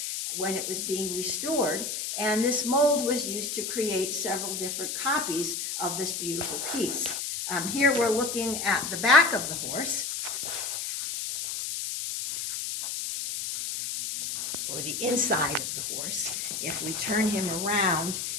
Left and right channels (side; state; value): left; noise; hiss, 4 dB below the sound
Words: when it was being restored, and this mold was used to create several different copies of this beautiful piece. Here we're looking at the back of the horse, or the inside of the horse. If we turn him around,